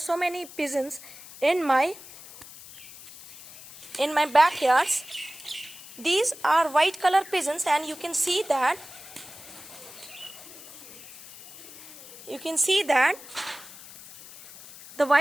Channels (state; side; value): noise; left; hiss, 17 dB below the sound